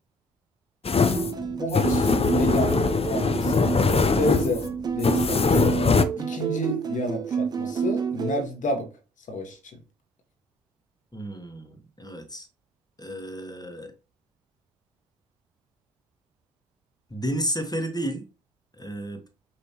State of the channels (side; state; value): both; normal; correlation 0.59